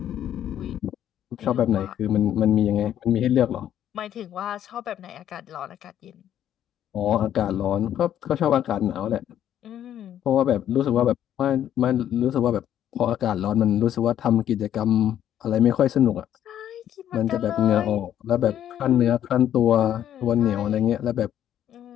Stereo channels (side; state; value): right; quieter; 10.7 dB